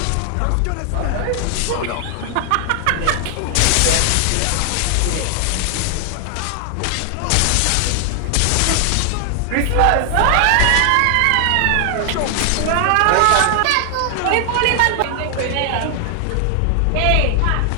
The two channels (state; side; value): different; both; correlation 0.00